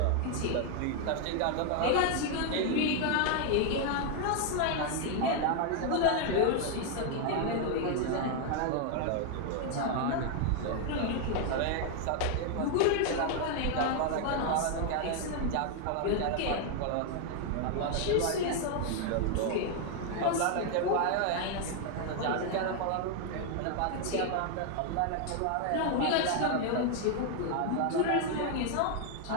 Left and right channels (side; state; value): both; different; correlation 0.00